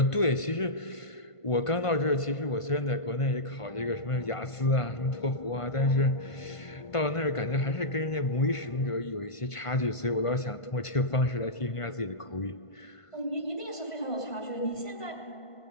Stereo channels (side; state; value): right; late; 1.5 ms